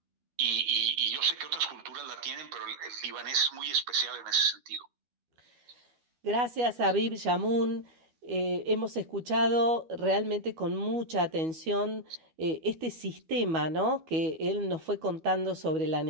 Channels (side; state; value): left; late; 12 ms